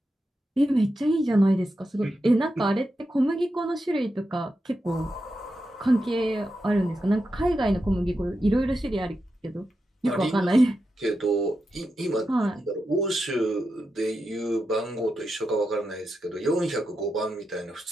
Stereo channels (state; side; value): normal; both; correlation 0.88